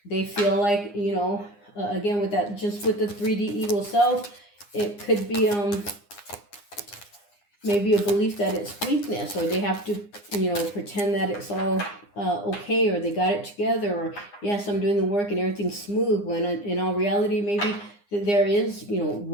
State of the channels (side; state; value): right; late; 9.8 ms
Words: they feel like, you know, again, with that, just with the 3D ego self, it could be maybe a belief that it's weakness, or they have to, you know, pretend that it's all okay, or they got it together, or yes, I'm doing the work and everything's smooth, when in all reality, maybe there is, you know,